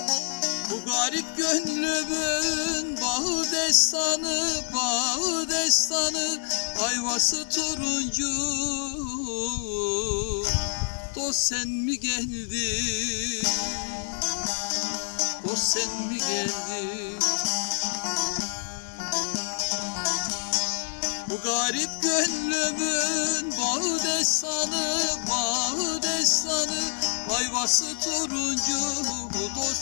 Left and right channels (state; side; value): silent; right; digital silence